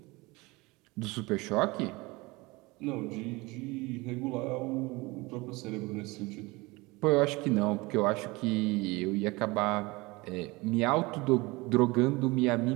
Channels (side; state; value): left; quieter; 23.4 dB